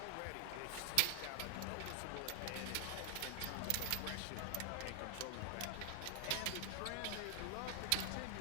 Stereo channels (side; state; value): both; different; correlation 0.00